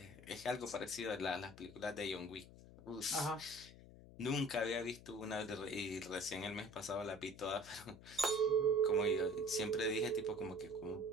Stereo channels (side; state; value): left; noise; hum, 18 dB below the sound